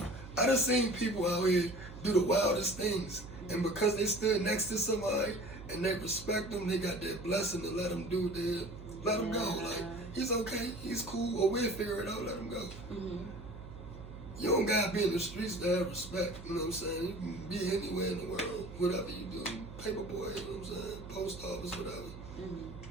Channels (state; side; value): noise; right; hum, 13 dB below the sound